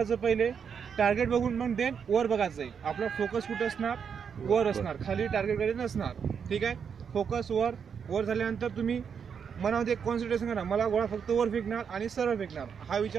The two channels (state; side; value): quieter; left; 6.9 dB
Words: पहिले टार्गेट बघून मग देन वर बघायचं आहे. आपला फोकस कुठं असणार, वर असणार, खाली टार्गेटकडे नसणार. ठीक आहे. फोकस वर, वर झाल्यानंतर तुम्ही मनामध्ये कॉन्सन्ट्रेशन करा, मला गोळा फक्त वर फेकणार आणि सरळ फेकणार, हा